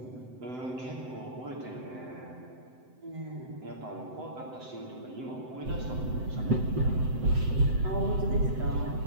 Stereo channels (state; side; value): late; left; 7.8 ms